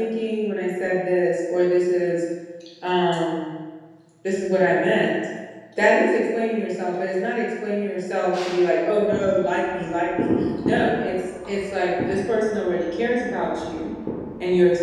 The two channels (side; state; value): both; identical; correlation 1.00